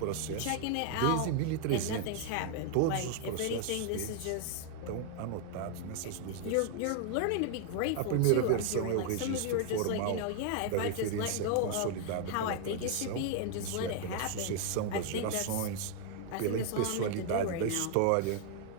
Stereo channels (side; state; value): both; different; correlation 0.00